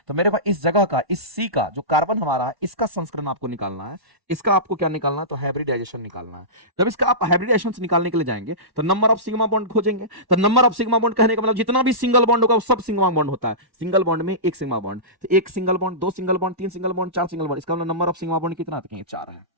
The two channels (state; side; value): late; left; 1.1 ms